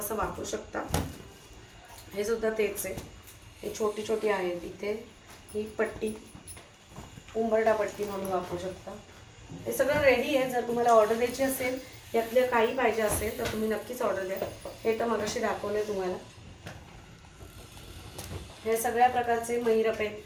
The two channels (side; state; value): both; identical; correlation 1.00